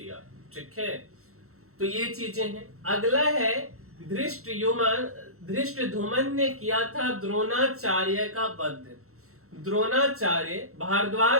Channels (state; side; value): late; left; 0.63 ms